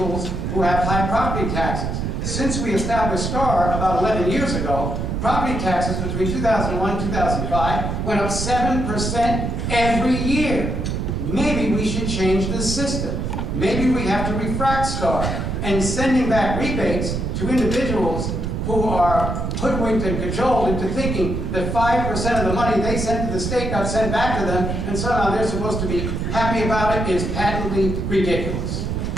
who have high property taxes. Since we established STAR about 11 years ago, property taxes between 2001 and 2005 went up 7% every year. Maybe we should change the system. Maybe we have to refract STAR and sending back rebates to individuals who are hoodwinked and cajoled into thinking that 5% of the money they sent to the state got sent back to them, and somehow they're supposed to be happy about it, is patently ridiculous.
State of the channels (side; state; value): right; noise; rumble, 2 dB below the sound